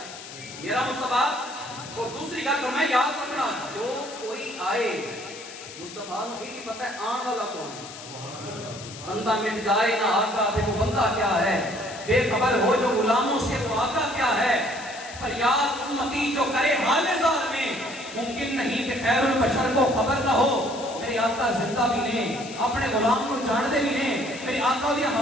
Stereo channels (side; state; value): left; noise; hiss, 14 dB below the sound